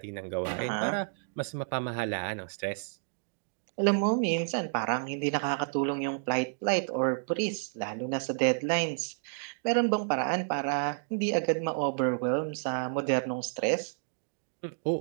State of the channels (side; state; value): left; silent; digital silence